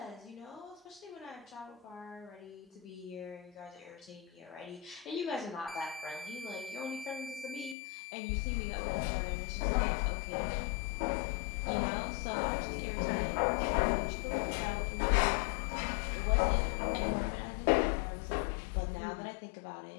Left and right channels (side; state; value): right; drops out; at 7.8 s